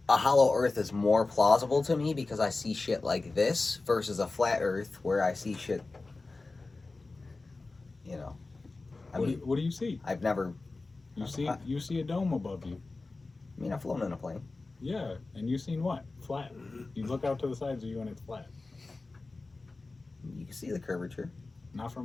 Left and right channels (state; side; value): quieter; right; 3.5 dB